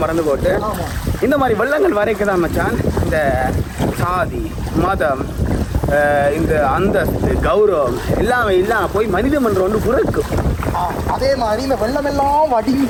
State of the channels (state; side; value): identical; both; correlation 1.00